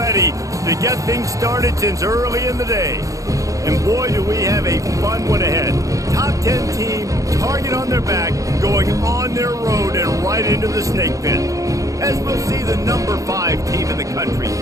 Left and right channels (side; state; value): left; late; 0.16 ms